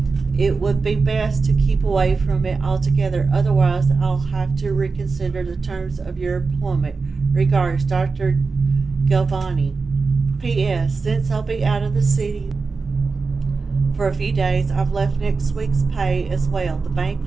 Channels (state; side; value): quieter; left; 4.4 dB